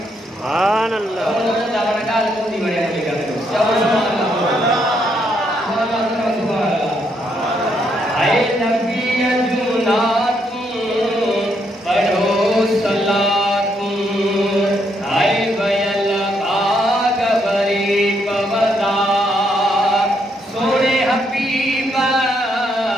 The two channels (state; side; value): normal; both; correlation 0.75